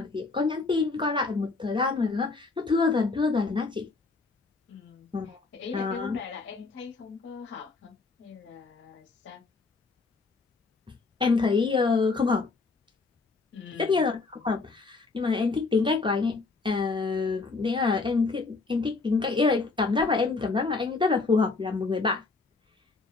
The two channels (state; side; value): quieter; right; 4.0 dB